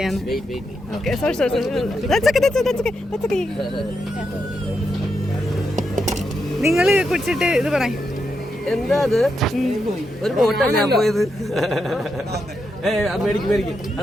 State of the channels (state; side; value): normal; both; correlation 0.83